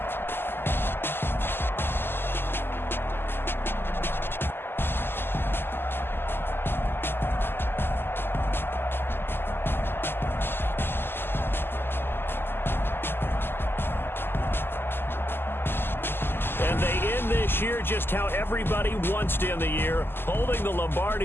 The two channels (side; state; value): right; late; 0.11 ms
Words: Year just how everybody wants to end the year, holding the